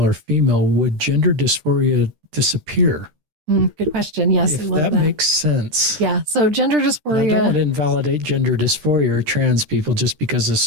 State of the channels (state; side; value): late; left; 13 ms